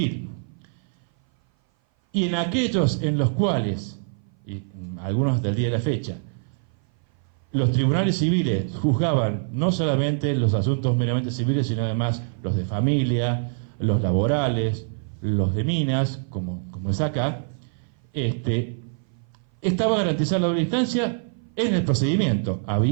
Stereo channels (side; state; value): left; silent; 57 dB below the other